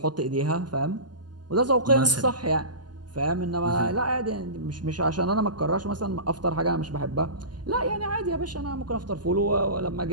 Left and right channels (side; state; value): left; late; 0.71 ms